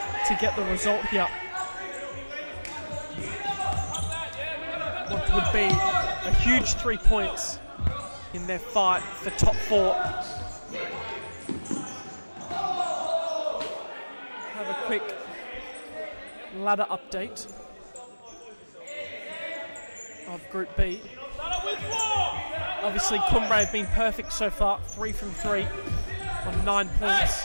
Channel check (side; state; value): both; inverted; correlation -1.00